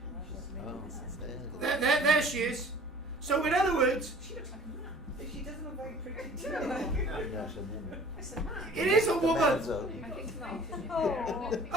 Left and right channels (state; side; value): normal; both; correlation 0.48